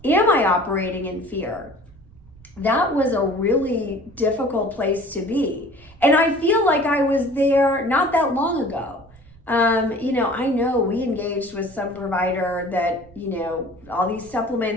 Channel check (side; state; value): right; noise; rumble, 25 dB below the sound